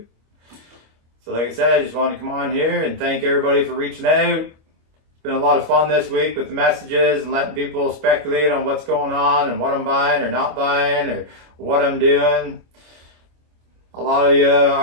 So like I said, I just want to come on here and thank everybody for reaching out. It's been a lot of fun this week with the messages and letting people speculate on what's going on and what I'm buying or not buying or what I'm doing. A lot of you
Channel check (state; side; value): late; left; 25 ms